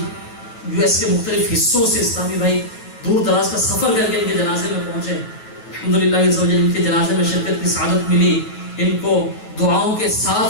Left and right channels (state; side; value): late; right; 9.2 ms